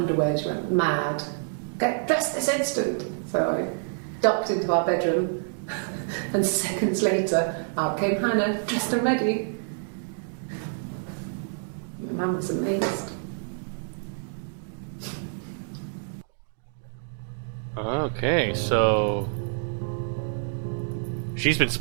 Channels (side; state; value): left; silent; digital silence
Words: she went mad. Get dressed this instant! So I ducked into our bedroom, and seconds later, out came Hannah, dressed and ready. My mum was amazed. Okay, so she's been